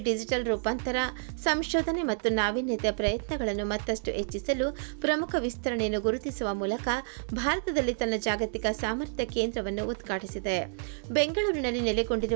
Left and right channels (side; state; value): left; silent; digital silence